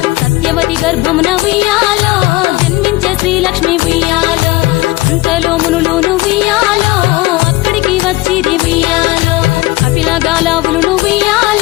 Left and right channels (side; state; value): right; quieter; 19.9 dB